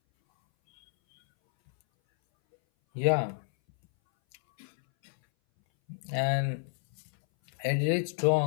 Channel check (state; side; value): silent; right; 58 dB below the other